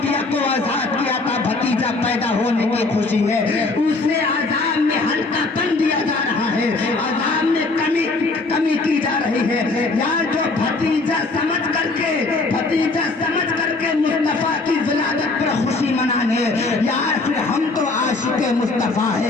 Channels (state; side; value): quieter; right; 3.5 dB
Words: کو آزاد کیا تھا, بھتیجا پیدا ہونے کی خوشی ہے, اسے عذاب میں ہلکا پن دیا جا رہا ہے, عذاب میں کمی کی جا رہی ہے. یار جو بھتیجا سمجھ کر کے مصطفیٰ کی ولادت پر خوشی منانے, یار پھر ہم تو عاشق مصطفیٰ